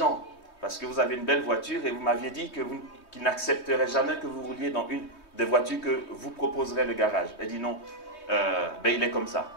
parce que vous avez une belle voiture et vous m'aviez dit qu'il n'accepterait jamais que vous rouliez dans une des voitures que vous proposerez le garage. Elle dit non, il est comme ça.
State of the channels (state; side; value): late; right; 3.2 ms